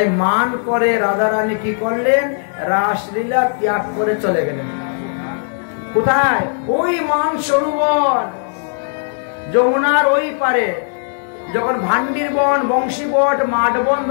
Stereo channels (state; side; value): silent; right; digital silence